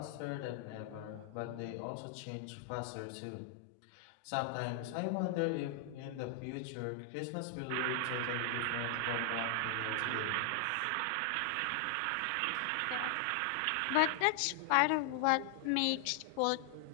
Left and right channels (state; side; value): different; both; correlation 0.00